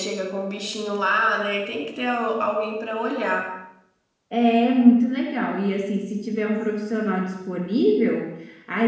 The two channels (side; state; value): both; identical; correlation 1.00